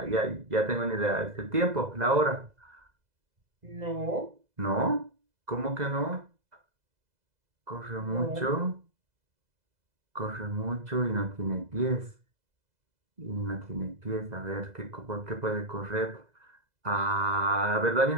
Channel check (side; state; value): left; late; 2.0 ms